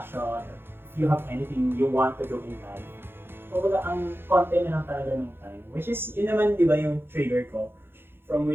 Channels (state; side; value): late; left; 0.10 ms